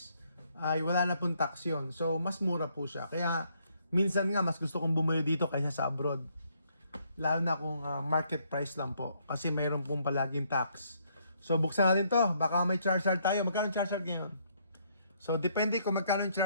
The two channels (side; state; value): both; inverted; correlation -0.70